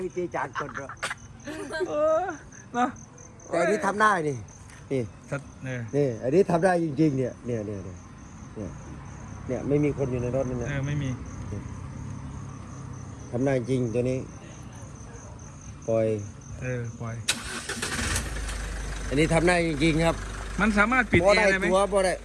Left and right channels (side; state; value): both; identical; correlation 1.00